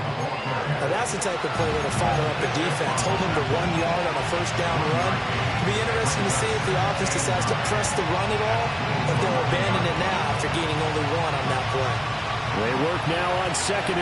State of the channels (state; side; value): identical; both; correlation 1.00